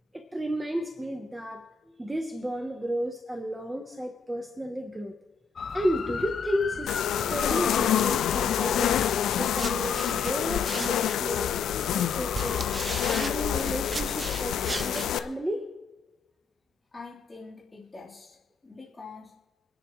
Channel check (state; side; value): quieter; right; 4.9 dB